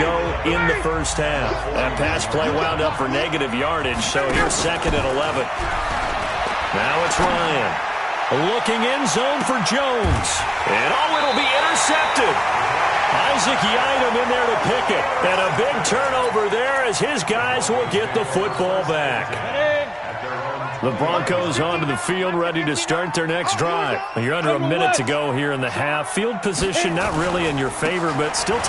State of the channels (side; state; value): both; identical; correlation 1.00